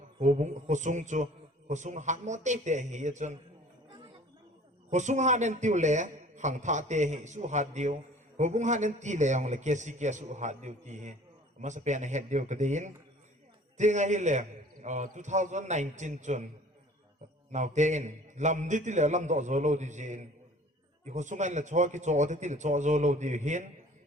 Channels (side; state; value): both; normal; correlation 0.49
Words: hobung khosung chu, khosung hat mo te hi ye chun. Khosung hat nen tiu le khang tha te hi su hat dio. Hubung hanen ti le yang le kesi kesu hat diu ti he mas pen head diu kadin tinga hi le 2019 chun now ten lam di ti le lam do zo lo di jin i ho sungai le cho ki cho ti le cho zo lo di hin